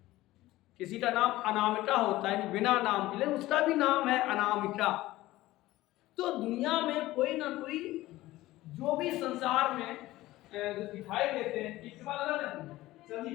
किसी का नाम अनामिका होता है, बिना नाम के, लेकिन उसका भी नाम है अनामिका। तो दुनिया में कोई ना कोई जो भी संसार में जो दिखाई देते हैं,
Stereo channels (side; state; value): right; quieter; 17.1 dB